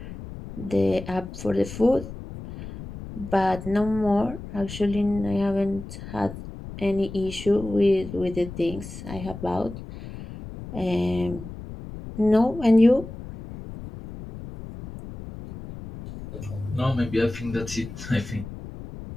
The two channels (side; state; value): left; noise; rumble, 12 dB below the sound